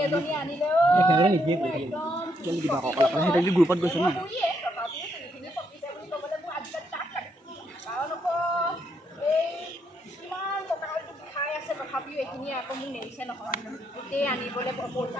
গ্ৰুপত গৈছে ন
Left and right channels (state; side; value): normal; both; correlation 0.76